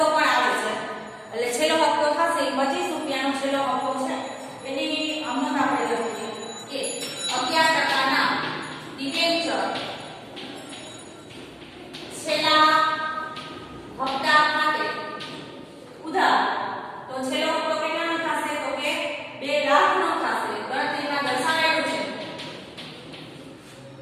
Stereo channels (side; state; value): both; identical; correlation 1.00